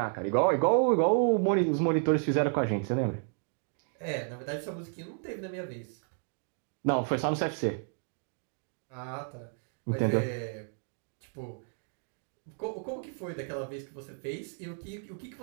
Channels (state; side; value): silent; left; 56 dB below the other